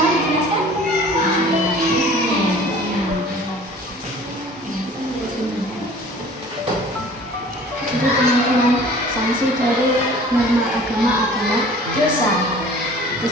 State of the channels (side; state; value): both; normal; correlation 0.47